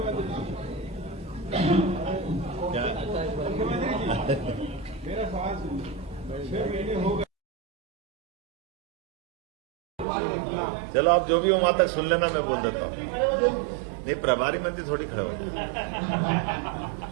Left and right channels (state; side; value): drops out; left; at 10.1 s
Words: क्या मेरा सवाल सुनिए। 6 महीने हो गए, चलो आप जो भी हो वहां तक सुन लेना, मैं बोल देता हूँ। नहीं, प्रभारी मंत्री थोड़ी खड़े हो।